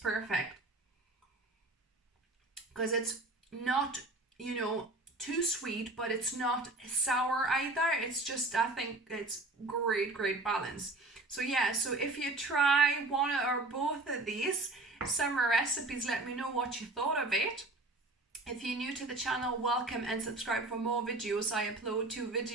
Because it's not, you know, too sweet, but it's not sour either. It's just, I think it's great balance. So yeah, so if you try one or both of these summer recipes, let me know what you thought of it. If you're new to the channel, welcome and subscribe for more videos. I upload 2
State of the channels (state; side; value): quieter; left; 3.1 dB